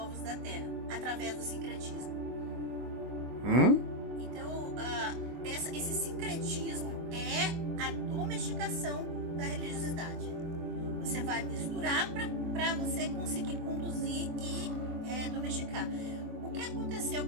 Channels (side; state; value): left; late; 24 ms